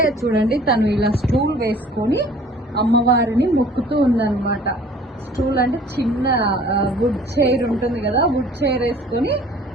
చూడండి, తను ఇలా స్టూల్ వేసుకొని అమ్మవారిని మొక్కుతూ ఉందన్నమాట. స్టూల్ అంటే చిన్న వుడ్ చైర్ ఉంటుంది కదా, వుడ్ చైర్ వేసుకొని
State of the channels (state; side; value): normal; both; correlation 0.51